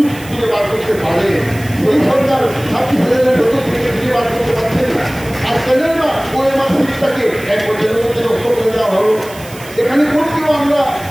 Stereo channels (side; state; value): right; noise; hiss, 18 dB below the sound